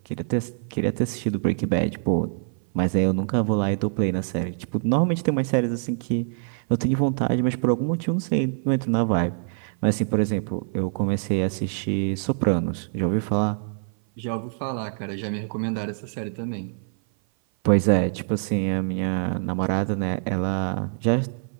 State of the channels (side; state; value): left; silent; 56 dB below the other